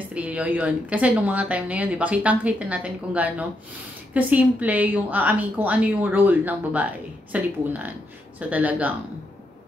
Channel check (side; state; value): both; normal; correlation 0.80